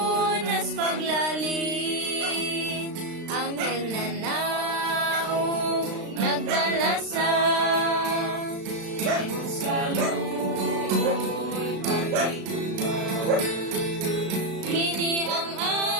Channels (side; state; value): left; late; 36 ms